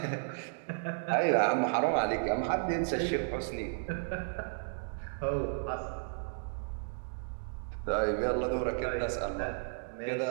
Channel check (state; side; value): silent; left; digital silence